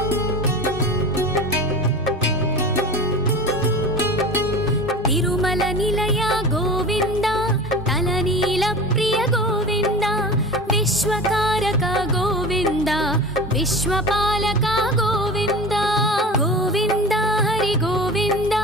ತಿರುಮಲ ನಿಲಯ ಗೋವಿಂದ, ತಲನೀಲ ಪ್ರಿಯ ಗೋವಿಂದ, ವಿಶ್ವಕಾರಕ ಗೋವಿಂದ, ವಿಶ್ವಪಾಲಕ ಗೋವಿಂದ. ಗೋವಿಂದ ಹರಿ ಗೋವಿಂದ,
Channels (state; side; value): normal; both; correlation 0.33